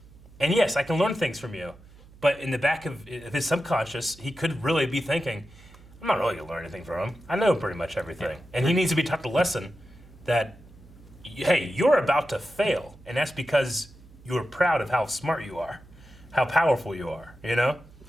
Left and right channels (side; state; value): right; noise; hum, 23 dB below the sound